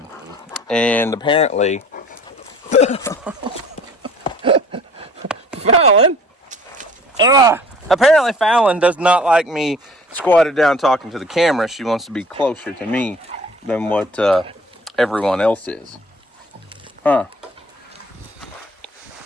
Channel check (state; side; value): normal; both; correlation 0.50